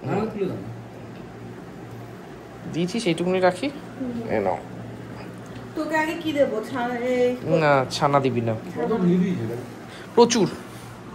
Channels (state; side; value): identical; both; correlation 1.00